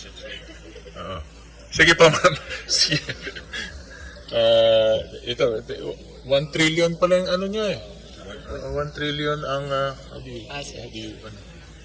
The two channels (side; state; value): both; identical; correlation 1.00